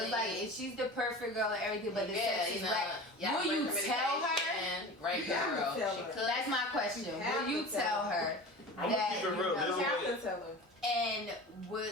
like family. if she's the perfect girl and everything, but the Yeah, sex you is know, whack. y'all Will you great tell her? communication, Great You have to girl. tell She her. could. That's my question. You have Will you to tell tell her I'm that gonna keep it you real. know, There's you a have way. to tell her.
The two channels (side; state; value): both; normal; correlation 0.35